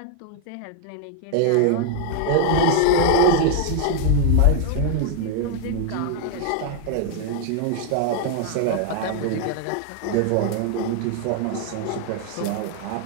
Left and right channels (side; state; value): both; different; correlation 0.00